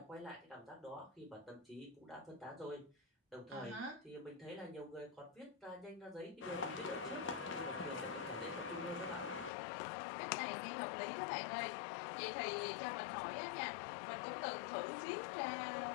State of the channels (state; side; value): drops out; right; at 9.5 s